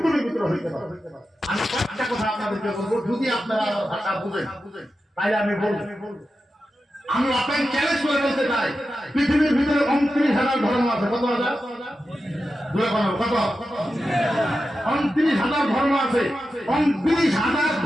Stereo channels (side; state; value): both; normal; correlation 0.91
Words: ভিতরে হইতে পারবে। আমি একটা কথা আপনাদেরকে বলবো, যদি আপনারা ভাষা বুঝেন তাহলে আমি বলবো। আমি আপনাকে চ্যালেঞ্জ করে বলতে চাই, পৃথিবীর ভিতরে 29,000 ধর্ম আছে। কত হাজার? কত? 29,000 ধর্ম আছে। 29,000